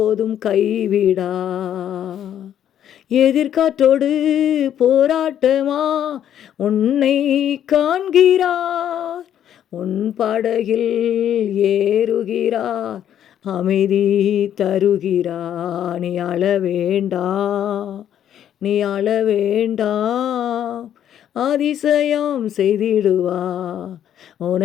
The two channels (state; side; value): quieter; right; 10.2 dB